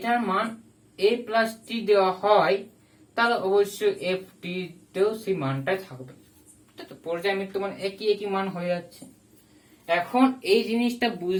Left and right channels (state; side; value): identical; both; correlation 1.00